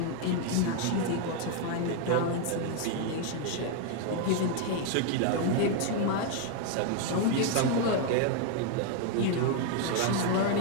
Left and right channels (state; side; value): different; both; correlation 0.00